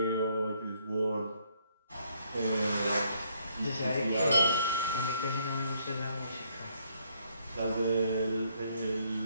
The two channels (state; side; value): inverted; both; correlation -0.69